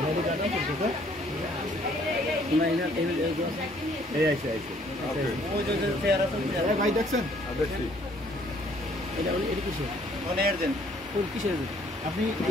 ভাই দেখছেন আপনি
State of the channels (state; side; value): normal; both; correlation 0.62